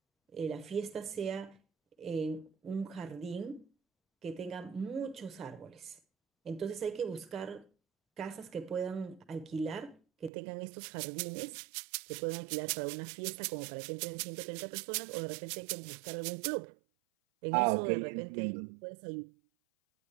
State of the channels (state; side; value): drops out; left; at 10.3 s